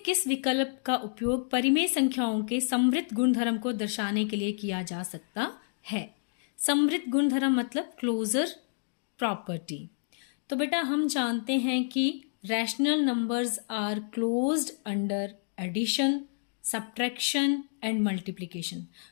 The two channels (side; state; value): right; silent; digital silence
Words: किस विकल्प का उपयोग परिमेय संख्याओं के समृद्ध गुणधर्म को दर्शाने के लिए किया जा सकता है। समृद्ध गुणधर्म मतलब क्लोजर प्रॉपर्टी। तो बेटा हम जानते हैं कि rational numbers are closed under addition, subtraction and multiplication,